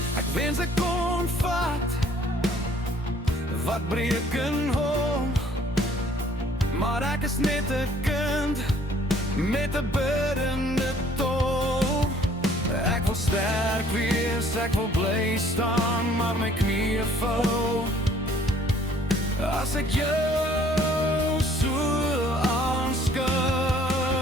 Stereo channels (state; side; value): normal; both; correlation 0.58